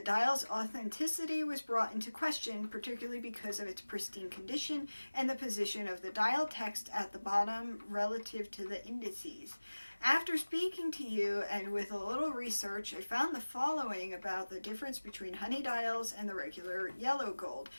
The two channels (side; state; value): both; inverted; correlation -1.00